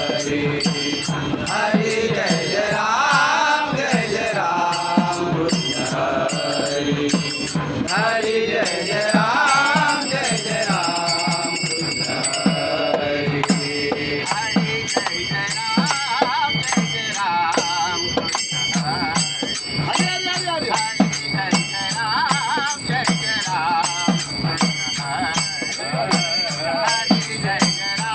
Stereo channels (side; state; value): both; identical; correlation 1.00